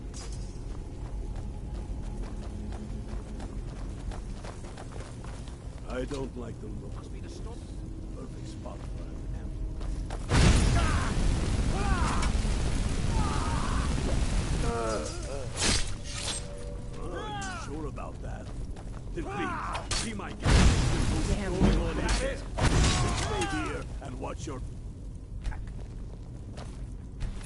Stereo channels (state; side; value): identical; both; correlation 1.00